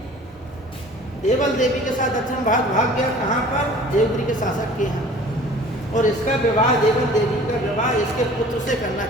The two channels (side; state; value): both; normal; correlation 0.47